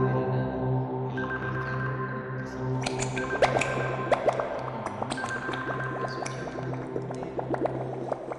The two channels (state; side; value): identical; both; correlation 1.00